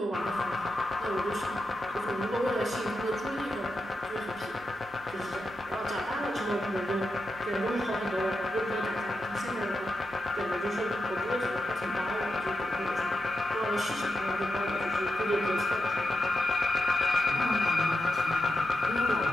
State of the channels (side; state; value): both; normal; correlation 0.87